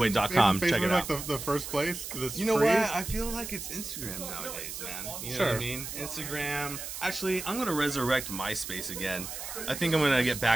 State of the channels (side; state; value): right; noise; hiss, 8 dB below the sound